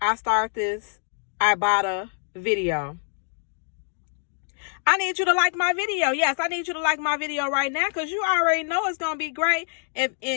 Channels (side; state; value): right; silent; 62 dB below the other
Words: I start this Ibotta video, I need you to like my video. Yes, I need you to like my video right now because you already know it's going to be great. And